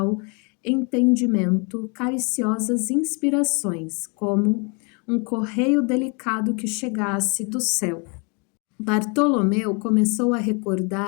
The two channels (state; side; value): quieter; right; 33.8 dB